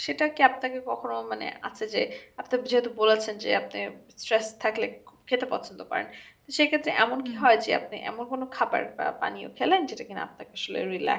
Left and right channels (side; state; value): both; identical; correlation 1.00